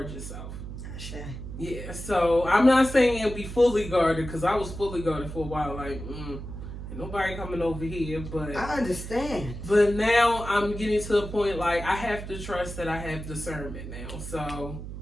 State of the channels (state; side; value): noise; right; hum, 9 dB below the sound